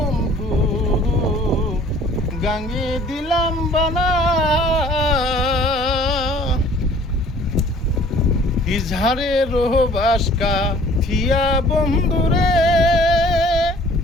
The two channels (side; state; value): both; normal; correlation 0.53